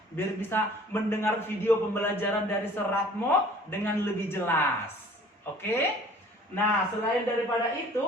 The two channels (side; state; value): both; normal; correlation 0.51